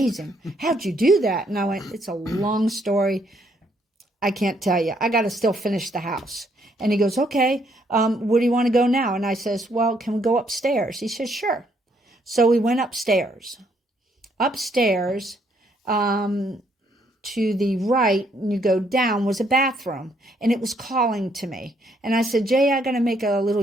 How'd you do that? And I went, it's a long story. I can't tell you. I got to still finish the house. And he goes, okay, where do you want to go now? And I says, well, can we go upstairs? He says, sure. So we went upstairs. Upstairs, to the right, and you go down, was a bathroom. And it was calling to me. And I said, Jay, I got to make a little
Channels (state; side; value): normal; both; correlation 0.70